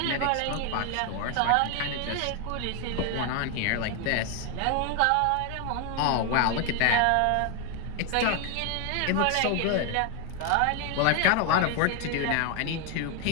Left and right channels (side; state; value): both; different; correlation 0.01